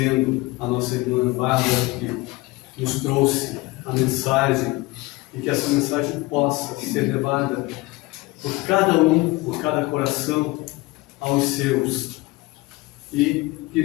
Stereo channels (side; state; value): right; quieter; 22.1 dB